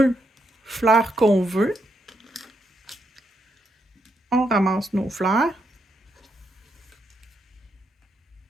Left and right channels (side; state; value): both; normal; correlation 0.80